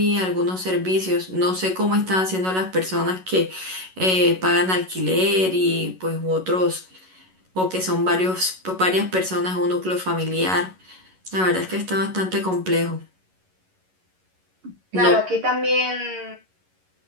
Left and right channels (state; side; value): late; left; 11 ms